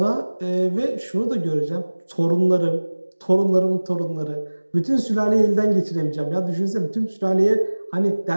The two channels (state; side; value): inverted; both; correlation -1.00